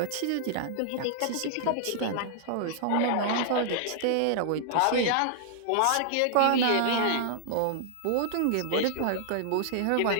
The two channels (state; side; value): different; both; correlation -0.01